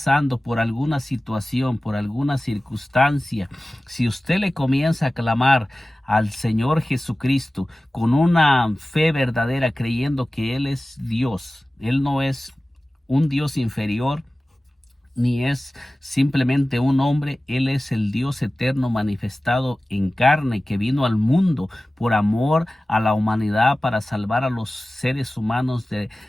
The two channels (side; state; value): both; normal; correlation 0.96